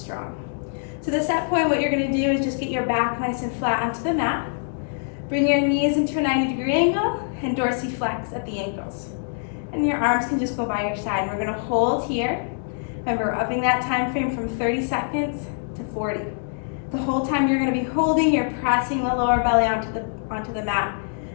So the set point, what you're going to do is just get your back nice and flat onto the mat. Bring your knees into a 90-degree angle and dorsiflex at the ankles. And your arms can just go by your side. We're going to hold here. Remember, we're upping that time frame from 30 seconds to 40. The whole time you're going to be holding, you're pressing the lower belly onto the mat.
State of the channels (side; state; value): right; silent; digital silence